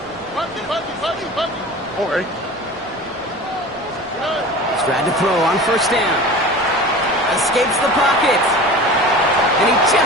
All right. Tried to throw on 1st down. Escapes the pocket. And he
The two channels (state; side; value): normal; both; correlation 0.37